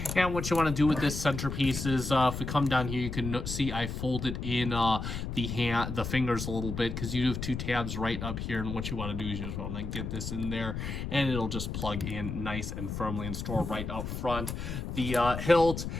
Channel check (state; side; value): noise; left; rumble, 5 dB below the sound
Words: And what you want to do with this centerpiece is, if we come down here, you can see I folded in the fingers a little bit, because you have two tabs right up here. And what you want to do is you just want to get this in there, and it'll just plug in nice and firmly and store right up front. The hilt,